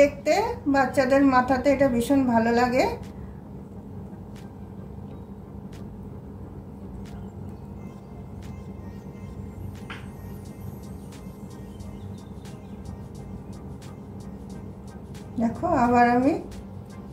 বাচ্চাদের মাথাতে এটা ভীষণ ভালো লাগে। দেখো আবার আমি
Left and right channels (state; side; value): identical; both; correlation 1.00